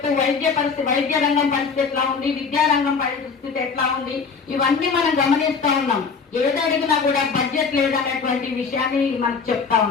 వైద్య రంగం పరిస్థితి ఎట్లా ఉంది, విద్యారంగం పరిస్థితి ఎట్లా ఉంది, ఇవన్నీ మనం గమనిస్తా ఉన్నాం. ఏది అడిగినా కూడా బడ్జెట్ లేదనేటువంటి విషయాన్ని మనకు చెప్తా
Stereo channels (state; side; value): quieter; right; 5.3 dB